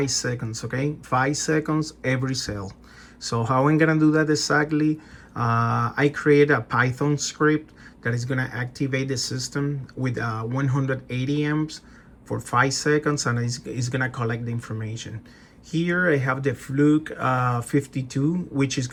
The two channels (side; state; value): both; identical; correlation 1.00